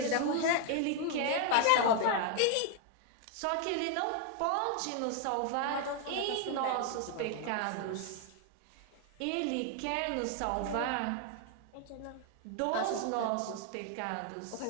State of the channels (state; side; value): different; both; correlation 0.00